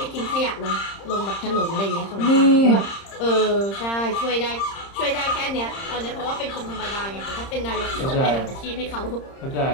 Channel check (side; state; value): right; late; 30 ms